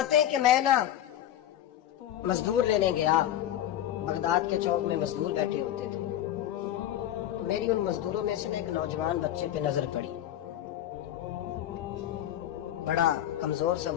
ہیں کہ میں نا مزدور لینے گیا، بغداد کے چوک میں مزدور بیٹھے ہوتے تھے، تو میری ان مزدوروں میں سے ایک نوجوان بچے پہ نظر پڑی۔ بڑا کمزور سا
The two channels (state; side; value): quieter; right; 12.1 dB